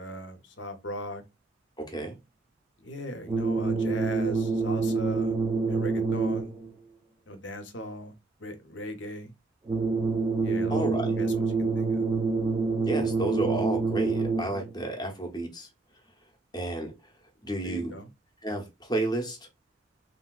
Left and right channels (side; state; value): left; quieter; 3.1 dB